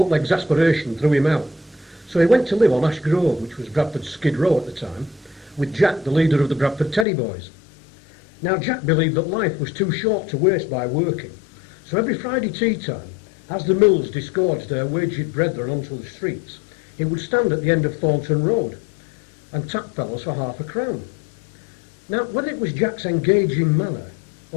exasperation, threw him out, so he went to live on Ash Grove, which was Bradford's Skid Row at the time, with Jack, the leader of the Bradford Teddy Boys. Now, Jack believed that life was too short to waste by working, so every Friday tea time, as the mills disgorged their waged brethren onto the streets, he would stand at the end of Thornton Road and tap fellows for £0.50. Now, whether it was Jack's engaging manner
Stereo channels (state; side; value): drops out; right; at 7.1 s